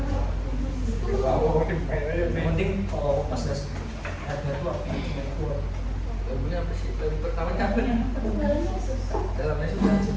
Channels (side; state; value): both; identical; correlation 1.00